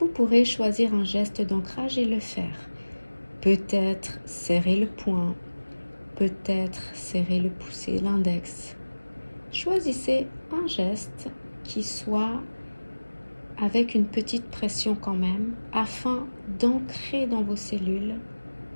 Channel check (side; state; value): both; inverted; correlation -1.00